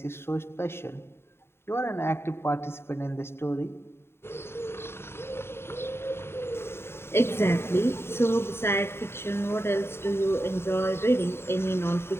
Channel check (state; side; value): late; right; 0.12 ms